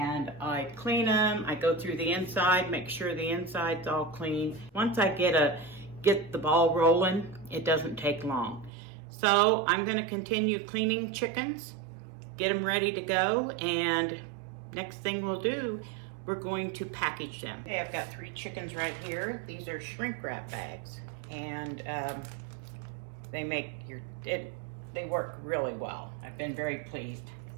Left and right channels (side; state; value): left; drops out; at 8.7 s